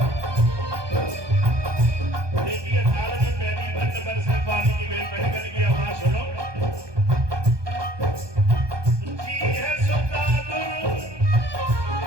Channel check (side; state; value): left; late; 1.2 ms